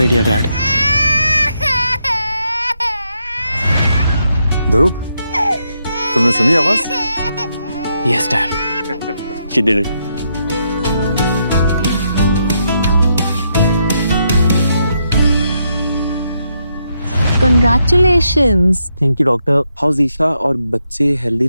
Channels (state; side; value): inverted; both; correlation -0.79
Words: dad. ध्रुव, तुमने सुनी आवाज? Yes dad. She did it. Congratulations. Thank you doctor. How's Isha और बच्चे हेल्दी?